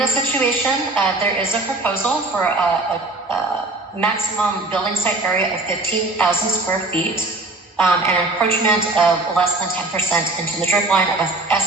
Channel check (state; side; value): quieter; left; 3.0 dB